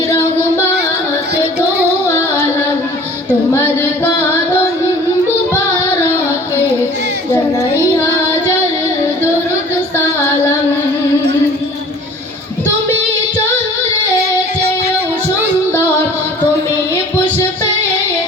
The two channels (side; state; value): both; normal; correlation 0.47